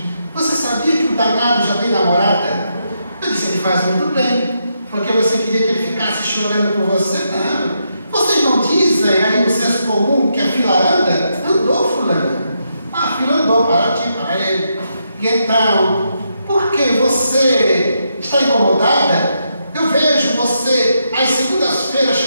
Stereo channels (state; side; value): inverted; both; correlation -0.81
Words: Você sabia que o danado já tem namorada? Eu disse: ele faz muito bem, porque você queria que ele ficasse chorando por você? Não. Vocês não dizem aí no senso comum que a fila anda? Andou, fulana. A fila andou para ti, para ele. E então, por que você está incomodada? Eu vejo você, às segundas-feiras,